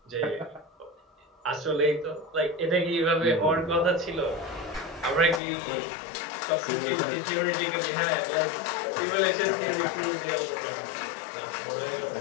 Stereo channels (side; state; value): right; drops out; at 5.4 s